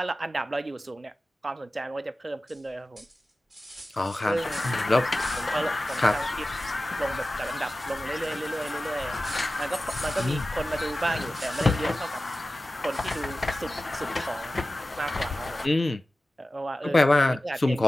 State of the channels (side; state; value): both; normal; correlation 0.95